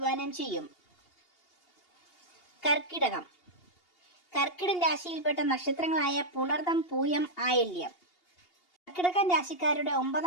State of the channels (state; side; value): late; right; 2.8 ms